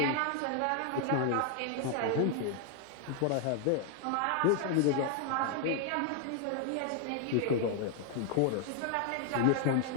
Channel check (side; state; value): both; different; correlation 0.00